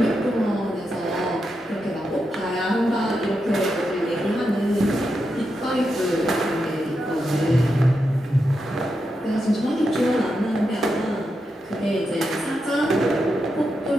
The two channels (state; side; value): normal; both; correlation 0.86